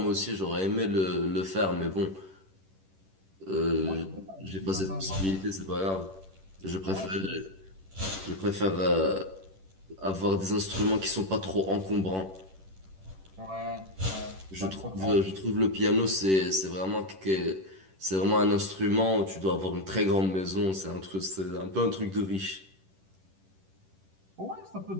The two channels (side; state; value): left; late; 10 ms